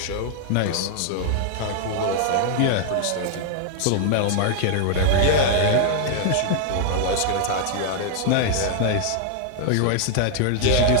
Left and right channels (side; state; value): both; different; correlation 0.00